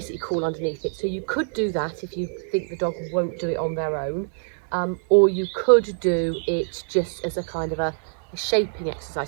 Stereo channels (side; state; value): left; silent; 59 dB below the other